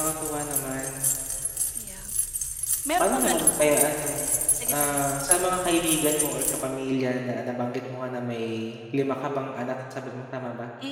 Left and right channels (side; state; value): both; identical; correlation 1.00